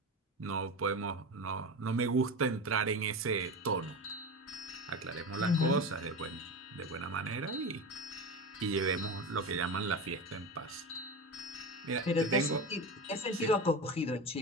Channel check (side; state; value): both; normal; correlation 0.25